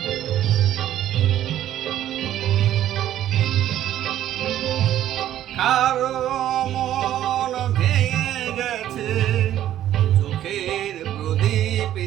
কারো মন ভেঙে গেছে, চোখের প্রদীপ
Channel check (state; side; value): quieter; left; 12.1 dB